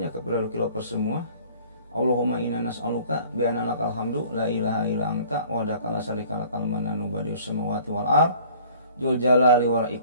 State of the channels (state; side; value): inverted; both; correlation -0.52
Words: ya kepada Lukilopers semua. Allahumma inna nas'aluka bi anna lakal hamdu la ilaha illa anta wahdaka la syarika lakal mananu badius samawati wal ard dzul jalali wal